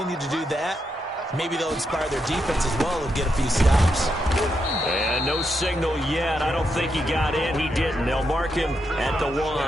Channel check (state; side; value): normal; both; correlation 0.82